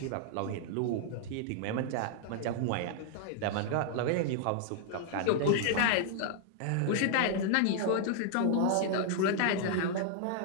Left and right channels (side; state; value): both; different; correlation -0.01